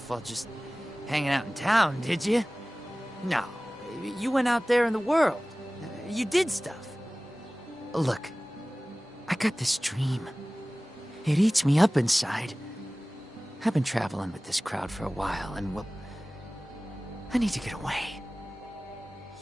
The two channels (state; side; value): normal; both; correlation 0.98